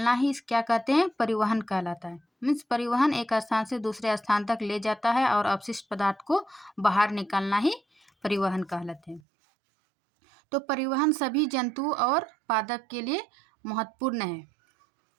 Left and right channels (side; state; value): left; drops out; at 9.2 s